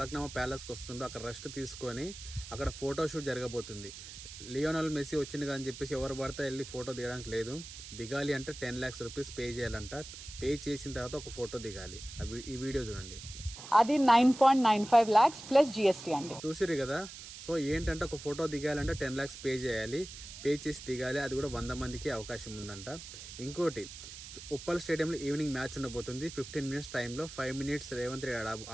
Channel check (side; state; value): right; noise; hiss, 13 dB below the sound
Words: ప్యాలెస్కి వస్తుండు. అక్కడ రెస్ట్ తీసుకొని అక్కడ ఫోటోషూట్ జరగబోతుంది. లియోనల్ మెస్సీ వచ్చింది అని చెప్పేసి ఎవరు పడితే వెళ్ళి ఫోటో దిగడానికి లేదు. దిగాలి అంటే 10 lakhs రూపీస్ పే చేయాలంట. పే చేసిన తర్వాత ఒక ఫోటో దిగాలి. ఈ వీడియో చూడండి. అది 9.95 lakhs ప్లస్ జిఎస్టీ అండి. చూసిరు కదా. సో ఏంటంటే ఒక ఫోటో దిగాలంటే 10 lakhs పే చేయాలి. పే చేసి దిగాలి. అది కూడా 100 మందికి అవకాశం ఉందంట. ఇంకోటి, ఉప్పల్ స్టేడియంలో ఈవినింగ్ మ్యాచ్ ఉండబోతుంది. 15 minutes టైంలో 5 minutes రేవంత్ రెడ్డి